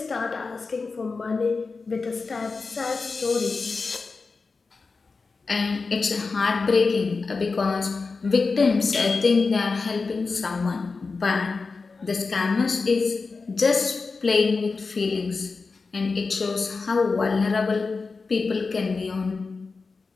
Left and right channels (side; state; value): right; quieter; 4.3 dB